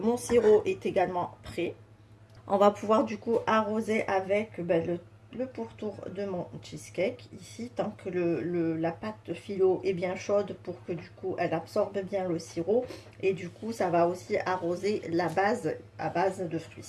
sirop est également prêt. On va pouvoir du coup arroser avec le pourtour de mon cheesecake ici, tant que la pâte phyllo est bien chaude pour que du coup elle absorbe bien le sirop, et du coup ça va aussi arroser la base à base de fruits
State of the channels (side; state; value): both; identical; correlation 1.00